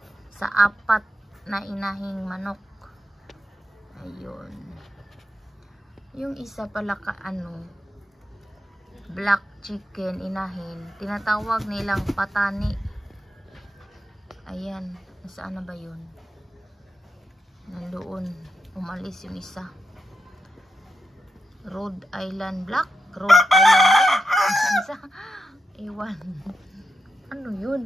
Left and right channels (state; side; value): normal; both; correlation 0.87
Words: sa 4 na inahing manok. Ayun. Yung isa pala black chicken inahin, tinatawag nilang patani. Ayan, nasaan na ba yun? Nandoon, umalis yung isa. Rhode Island black, Rhode Island red. Isa, ewan, ano